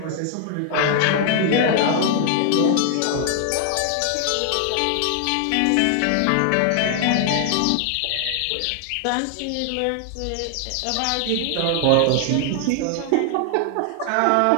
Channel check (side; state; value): both; different; correlation 0.00